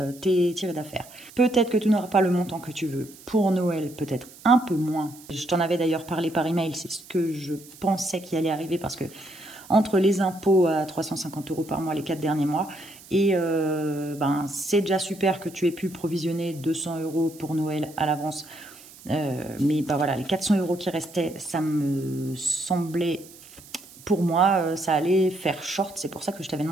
t'es tiré d'affaire. Peut-être que tu n'auras pas le montant que tu veux pour Noël, peut-être un peu moins. Je t'en avais d'ailleurs parlé par email, c'est ce que je pensais qui allait arriver parce que entre les impôts à 350 € par mois les 4 derniers mois et c'est déjà super que tu aies pu provisionner 200 € pour Noël à l'avance. Mais voilà, les 400 € qui restaient, ça me semblait... Pour moi, ça allait faire short. C'est pour ça que je t'avais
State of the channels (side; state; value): right; noise; hiss, 21 dB below the sound